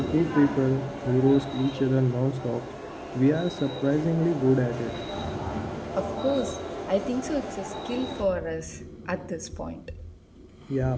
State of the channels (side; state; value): both; identical; correlation 1.00